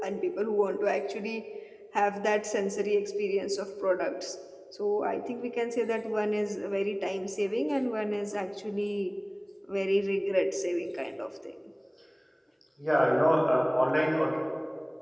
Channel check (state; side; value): identical; both; correlation 1.00